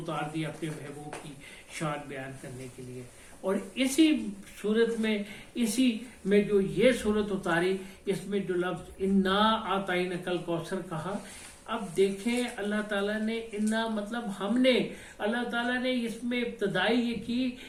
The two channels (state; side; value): identical; both; correlation 1.00